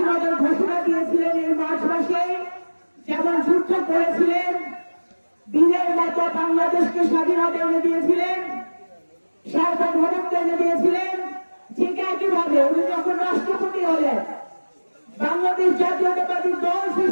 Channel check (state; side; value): inverted; both; correlation -1.00